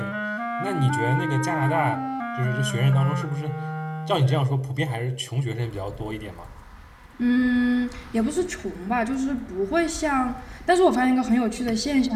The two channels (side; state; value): both; identical; correlation 1.00